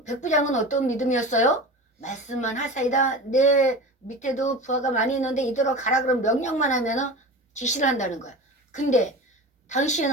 백부장은 어떤 믿음이었어요? 말씀만 하사이다. 내 밑에도 부하가 많이 있는데 이대로 가라 그럼 명령만 하면은 지시를 한다는 거야. 근데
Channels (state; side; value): normal; both; correlation 0.31